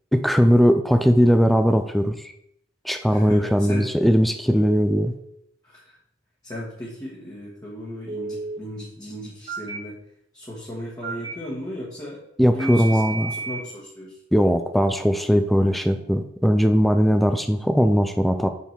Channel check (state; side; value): normal; both; correlation 0.95